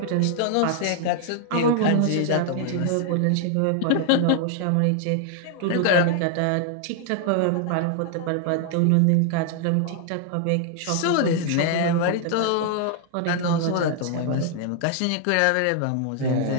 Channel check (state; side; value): different; both; correlation 0.00